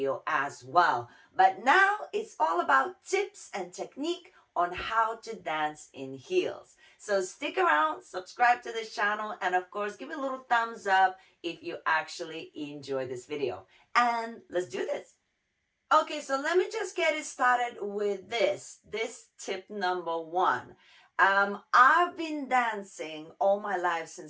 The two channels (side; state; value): both; identical; correlation 1.00